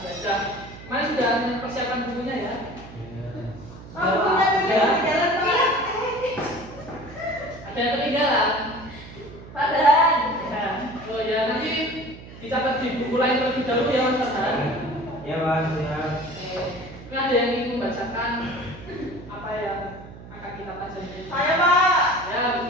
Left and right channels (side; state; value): right; noise; hum, 16 dB below the sound